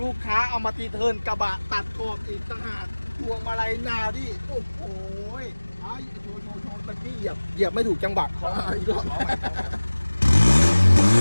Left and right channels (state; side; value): inverted; both; correlation -1.00